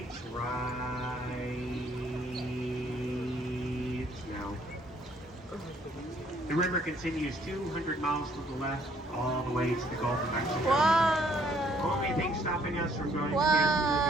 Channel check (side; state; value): both; normal; correlation 0.65